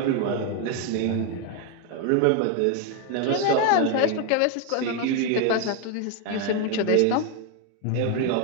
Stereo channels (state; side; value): different; both; correlation 0.01